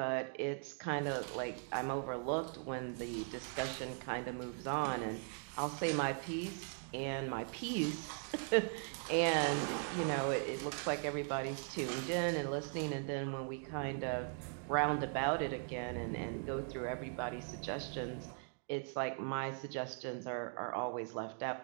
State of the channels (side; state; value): left; silent; 51 dB below the other